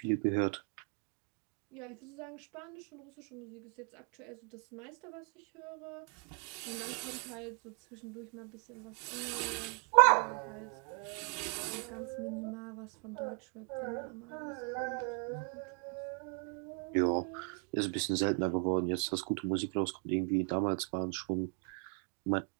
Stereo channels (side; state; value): left; quieter; 39.7 dB